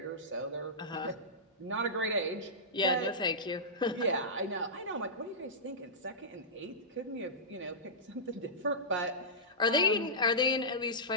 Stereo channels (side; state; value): both; normal; correlation -0.15